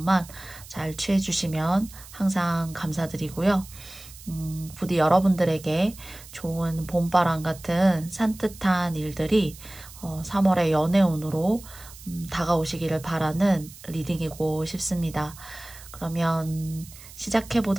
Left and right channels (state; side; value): noise; right; hiss, 18 dB below the sound